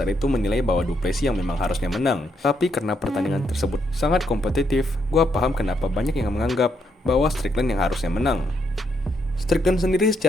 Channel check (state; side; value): normal; both; correlation 0.77